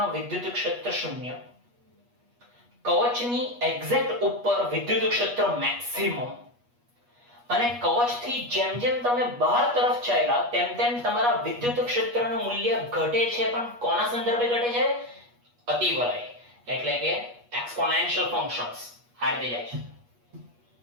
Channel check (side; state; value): left; late; 8.3 ms